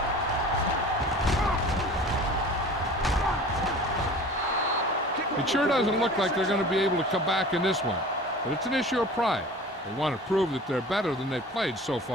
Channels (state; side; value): normal; both; correlation 0.42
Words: It sure doesn't look like they're going to be able to come back in this one, but it's an issue of pride. They want to prove that they're better than they've played so